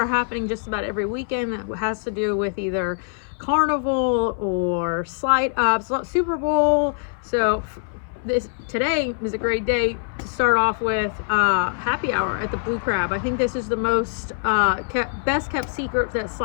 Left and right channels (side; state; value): right; silent; 61 dB below the other